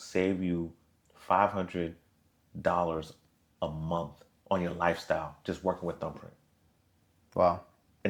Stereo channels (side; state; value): both; identical; correlation 1.00